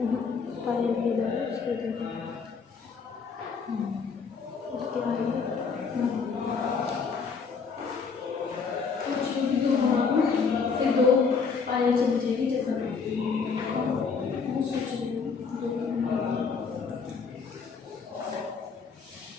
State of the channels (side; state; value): right; quieter; 5.4 dB